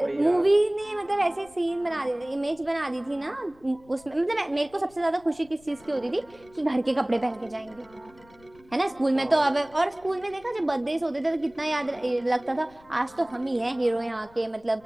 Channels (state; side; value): noise; left; rumble, 26 dB below the sound